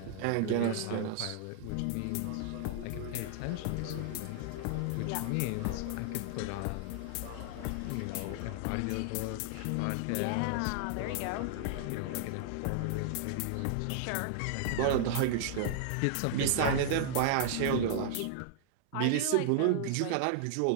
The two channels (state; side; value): different; both; correlation -0.01